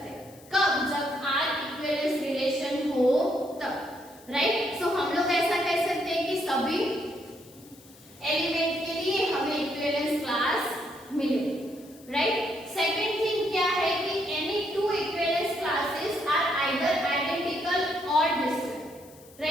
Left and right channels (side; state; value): left; noise; hiss, 24 dB below the sound